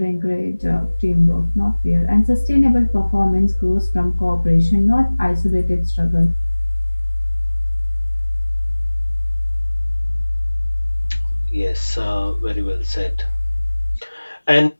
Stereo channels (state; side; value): inverted; both; correlation -1.00